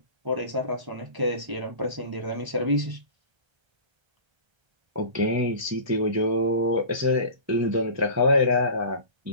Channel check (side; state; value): left; late; 1.3 ms